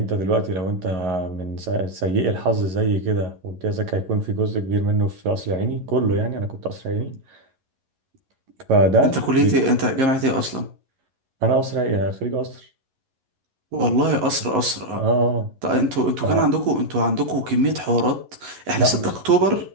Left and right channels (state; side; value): late; left; 11 ms